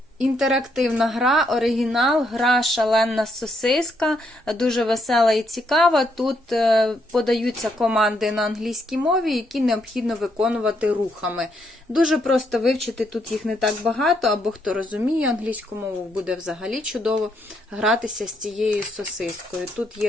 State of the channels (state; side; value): normal; both; correlation 0.75